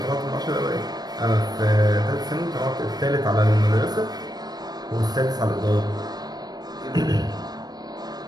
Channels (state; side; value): late; left; 0.19 ms